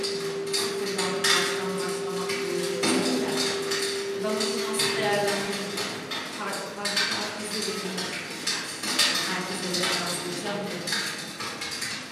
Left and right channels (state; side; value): identical; both; correlation 1.00